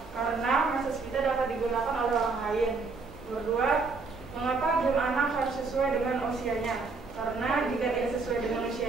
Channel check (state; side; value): quieter; left; 4.3 dB